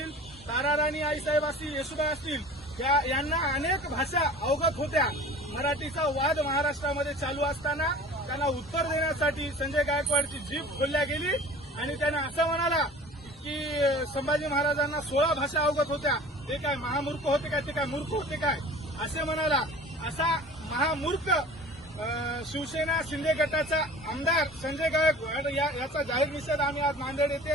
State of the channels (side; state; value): both; normal; correlation 0.42